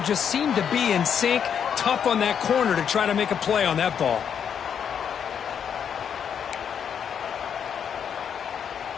seem to be in sync. Tough on that corner to try to make a play on that ball.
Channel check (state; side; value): quieter; right; 7.9 dB